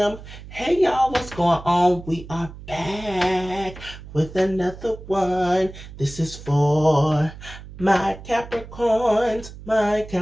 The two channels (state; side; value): noise; right; hum, 15 dB below the sound